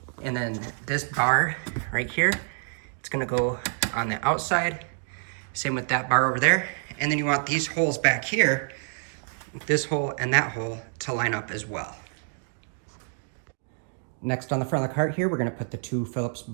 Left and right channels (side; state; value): left; silent; digital silence